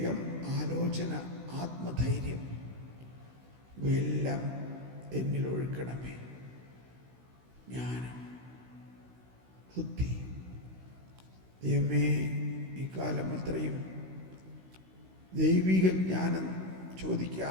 ആലോചന, ആത്മധൈര്യം ഇവയെല്ലാം എന്നിൽ ഒഴുക്കണമേ. ജ്ഞാനം, ബുദ്ധി. ദൈവമേ, ഈ കാലം അത്രയും ദൈവിക ജ്ഞാനം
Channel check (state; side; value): late; left; 16 ms